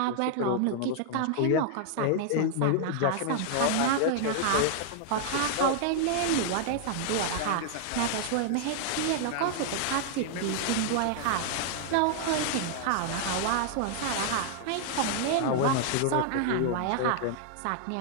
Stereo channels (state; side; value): different; both; correlation -0.01